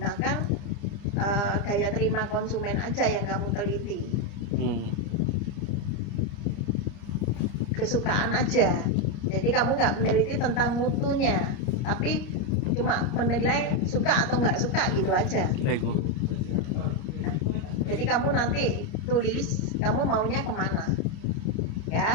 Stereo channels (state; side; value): late; right; 30 ms